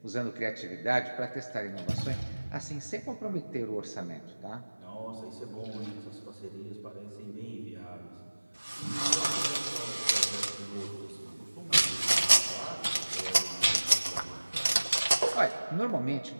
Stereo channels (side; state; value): both; inverted; correlation -1.00